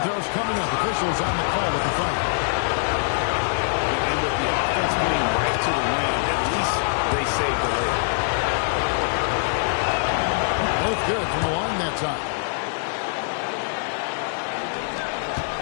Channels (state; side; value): silent; right; digital silence